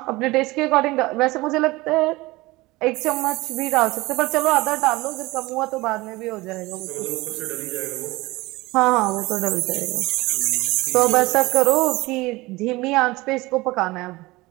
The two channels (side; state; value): left; quieter; 21.0 dB